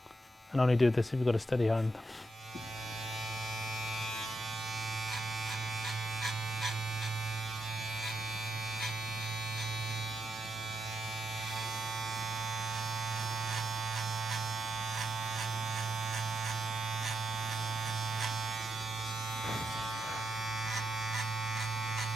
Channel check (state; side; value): normal; both; correlation 0.83